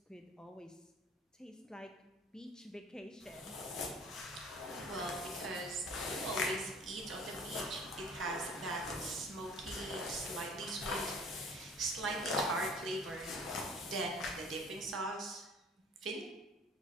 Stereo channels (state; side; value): normal; both; correlation 0.48